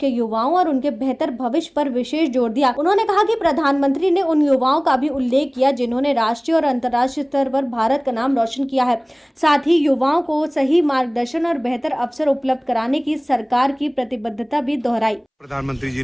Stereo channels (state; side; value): identical; both; correlation 1.00